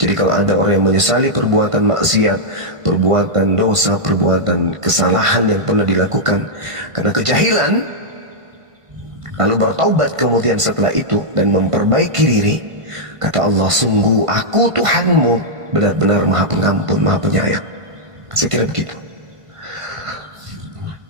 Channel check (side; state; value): left; late; 1.5 ms